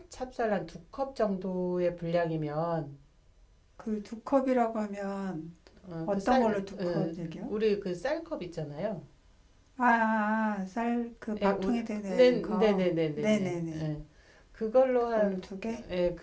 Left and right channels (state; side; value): identical; both; correlation 1.00